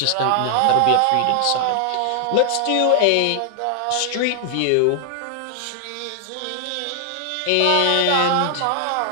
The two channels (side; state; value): both; different; correlation 0.00